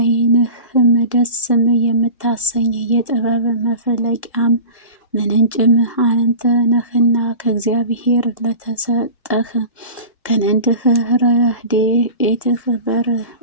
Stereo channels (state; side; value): inverted; both; correlation -0.35